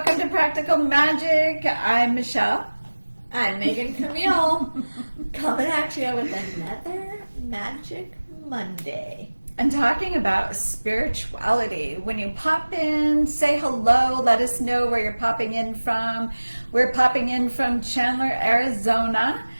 to Practical Magic. I'm Michelle. I'm Megan Camille. Coming at you with another Magic Monday. And talking about spirituality. When you pop in, say hello, let us know where you're popping in from. We're popping in from Chandler, Arizona.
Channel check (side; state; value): both; inverted; correlation -1.00